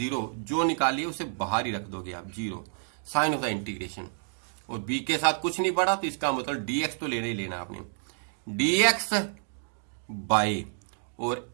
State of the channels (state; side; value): silent; left; digital silence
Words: जो निकाली उसे बाहर ही रख दोगे आप 0, साइन ऑफ द इंटीग्रेशन, और b के साथ कुछ नहीं पड़ा तो इसका मतलब dx तो लेना ही लेना आपने, dx बाय, और